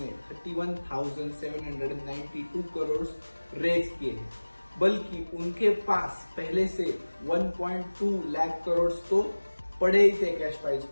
31,792 करोड़ रेज किए हैं, बल्कि उनके पास पहले से 1.2 लाख करोड़ तो पड़े ही थे कैश फाइल्स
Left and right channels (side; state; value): both; inverted; correlation -1.00